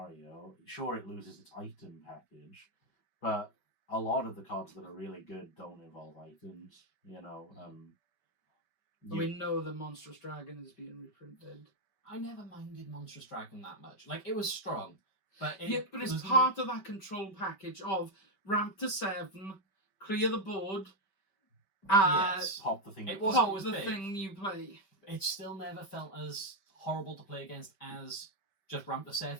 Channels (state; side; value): late; right; 5.2 ms